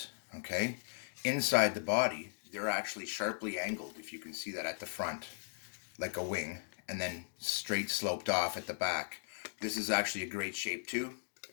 okay? Inside the body, they're actually sharply angled, if you can see that at the front, like a wing, and then straight sloped off at the back. This is actually a great shape too.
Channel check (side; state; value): right; silent; digital silence